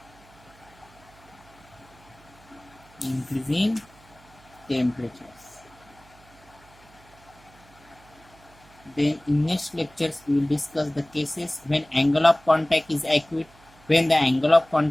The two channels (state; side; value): noise; right; hum, 26 dB below the sound